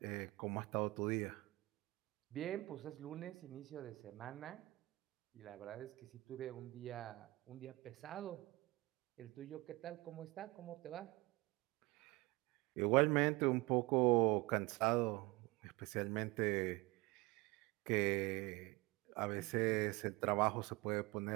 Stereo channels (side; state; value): left; quieter; 22.1 dB